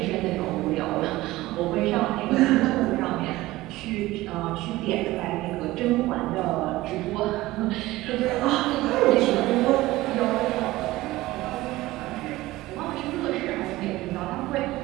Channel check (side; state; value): left; quieter; 18.0 dB